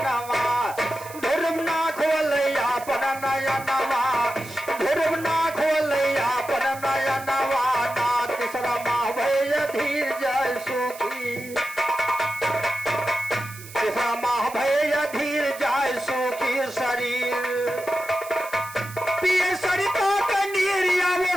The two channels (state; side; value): noise; right; hiss, 16 dB below the sound